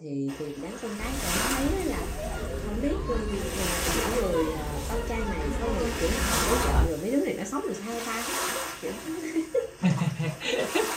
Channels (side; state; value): both; identical; correlation 1.00